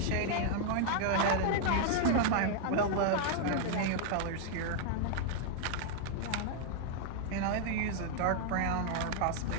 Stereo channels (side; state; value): both; different; correlation 0.00